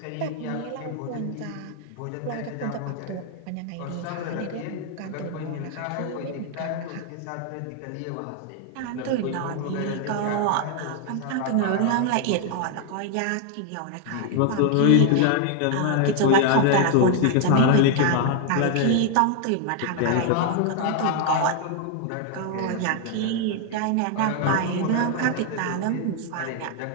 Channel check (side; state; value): both; different; correlation 0.00